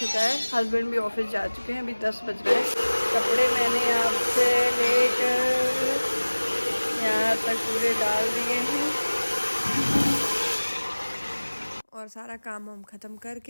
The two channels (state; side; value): inverted; both; correlation -1.00